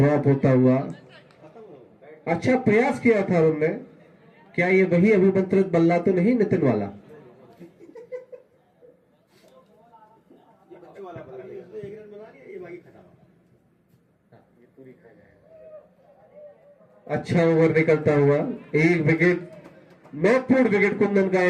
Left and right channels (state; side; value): identical; both; correlation 1.00